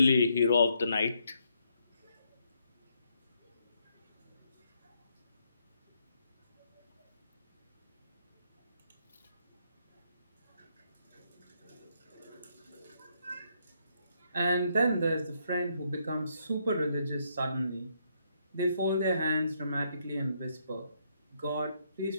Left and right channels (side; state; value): both; inverted; correlation -0.75